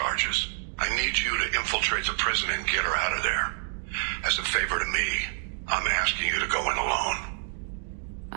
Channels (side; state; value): left; silent; digital silence